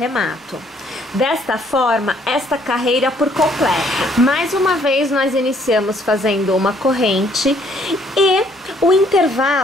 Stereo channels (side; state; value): both; normal; correlation 0.65